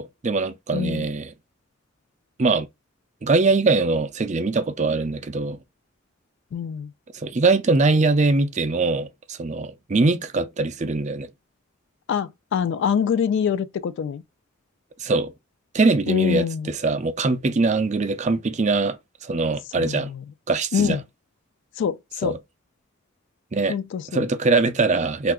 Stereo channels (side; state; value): both; normal; correlation 0.36